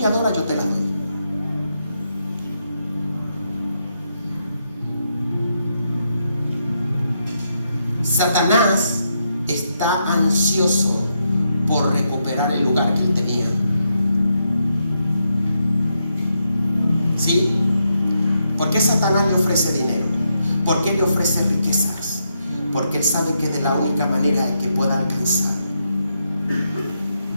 adoras, yo te las doy. Satanás está ansioso por recuperar el lugar que él tenía. ¿Sí? ¿Por qué Satanás le ofrece dinero? ¿Por qué le ofrece riquezas? Porque él sabe que de la única manera en que pueda alcanzar.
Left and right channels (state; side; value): inverted; both; correlation -0.81